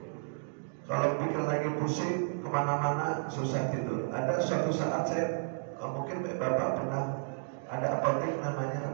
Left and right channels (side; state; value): left; silent; digital silence